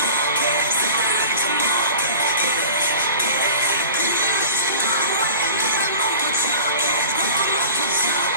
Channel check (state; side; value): inverted; both; correlation -0.40